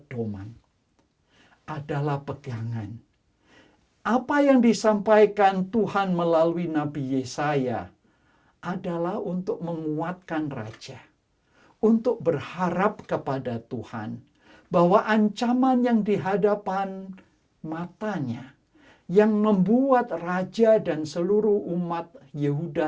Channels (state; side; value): identical; both; correlation 1.00